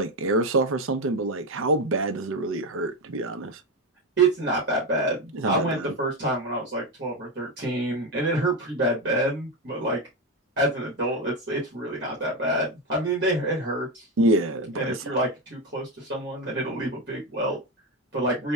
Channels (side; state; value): both; normal; correlation 0.13